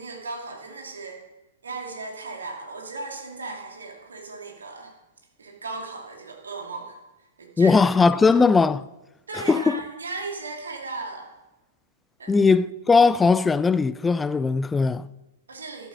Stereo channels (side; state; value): right; quieter; 3.9 dB